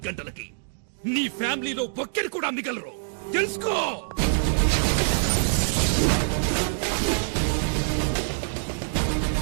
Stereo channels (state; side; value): silent; left; digital silence